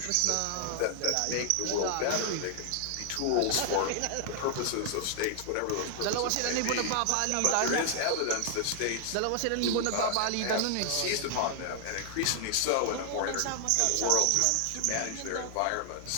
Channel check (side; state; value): both; different; correlation 0.00